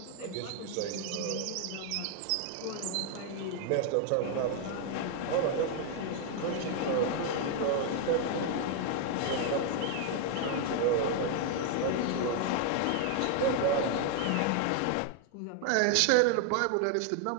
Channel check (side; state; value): both; different; correlation 0.00